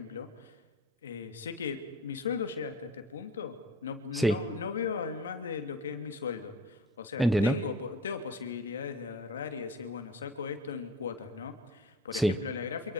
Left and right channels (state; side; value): normal; both; correlation 0.40